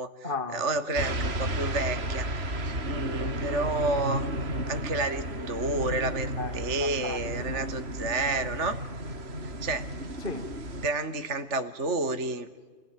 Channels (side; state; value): left; late; 3.3 ms